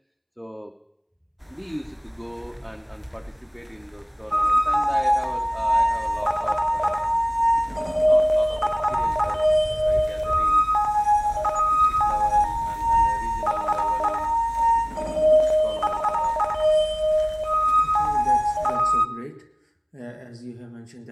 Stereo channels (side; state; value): both; identical; correlation 1.00